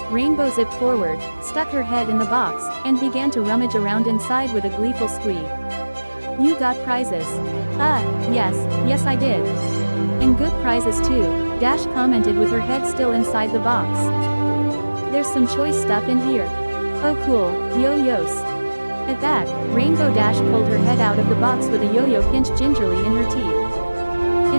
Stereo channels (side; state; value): both; inverted; correlation -1.00